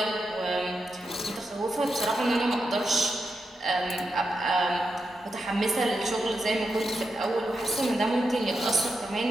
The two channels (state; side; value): normal; both; correlation 0.86